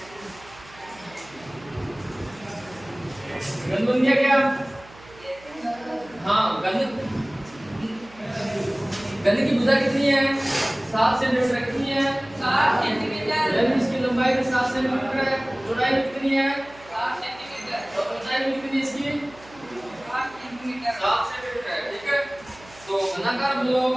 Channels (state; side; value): noise; right; hum, 22 dB below the sound